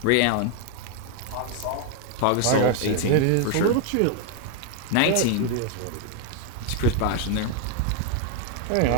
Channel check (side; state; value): both; different; correlation 0.01